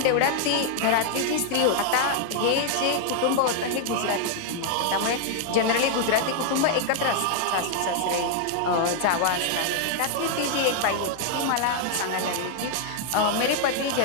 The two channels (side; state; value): both; different; correlation -0.01